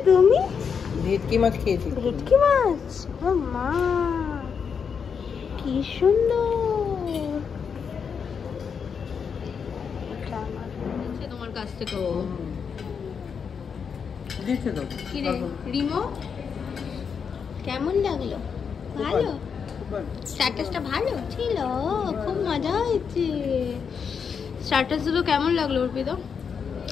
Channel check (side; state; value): right; quieter; 6.5 dB